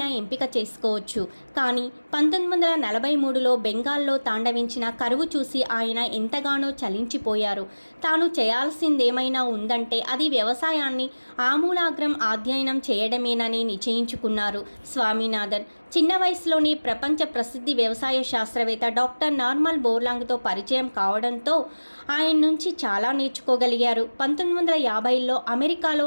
ఎంపిక చేసుకోవచ్చు. కానీ 1943లో బెంగాల్లో తాండవించిన కరువు చూసి ఆయన ఎంతగానో చలించిపోయారు. తాను చేయాల్సిందేమైనా ఉందంటే అది వ్యవసాయాన్ని ఆమూలాగ్రం అధ్యయనం చేయడమేనని నిశ్చయించుకున్నారు స్వామినాథన్. చిన్న వయసులోనే ప్రపంచ ప్రసిద్ధి వ్యవసాయ శాస్త్రవేత్త డాక్టర్ నార్మన్ బోర్లాంగ్తో పరిచయం కావడంతో ఆయన నుంచి చాలా నేర్చుకోగలిగారు. 1950లో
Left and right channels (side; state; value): both; inverted; correlation -1.00